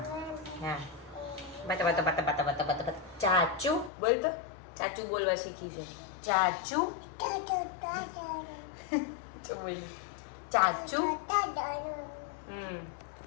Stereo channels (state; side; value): drops out; right; at 3.9 s